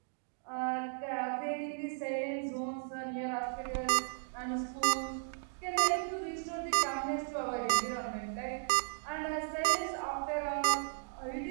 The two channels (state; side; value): silent; left; digital silence